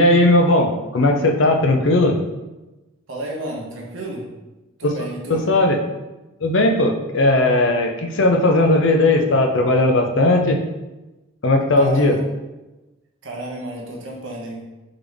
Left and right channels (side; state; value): both; normal; correlation 0.09